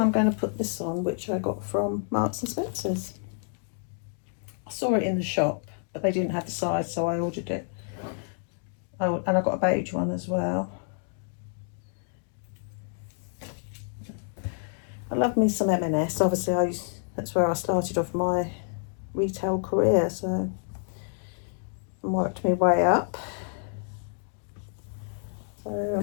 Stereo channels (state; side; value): silent; right; 59 dB below the other